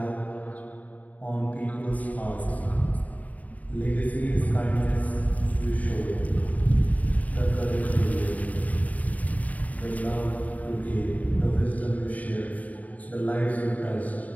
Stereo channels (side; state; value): right; late; 0.073 ms